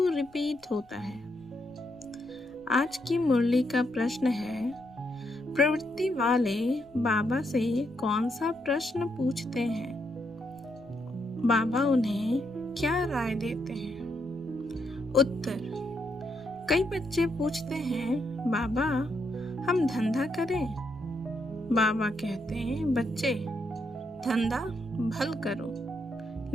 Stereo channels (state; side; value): noise; left; rumble, 28 dB below the sound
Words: रिपीट होता है। आज की मुरली का प्रश्न है, प्रवृत्ति वाले बाबा से कौन सा प्रश्न पूछते हैं? बाबा उन्हें क्या राय देते हैं? उत्तर: कई बच्चे पूछते हैं, बाबा हम धंधा करें? बाबा कहते हैं, बच्चे धंधा भल करो,